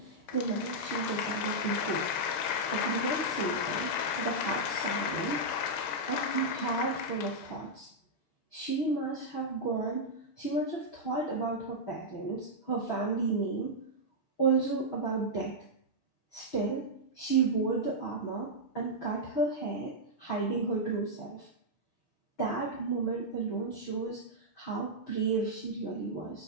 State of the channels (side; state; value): right; late; 7.1 ms